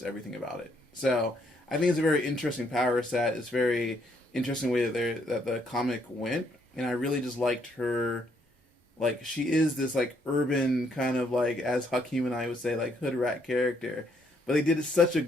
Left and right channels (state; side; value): normal; both; correlation 0.71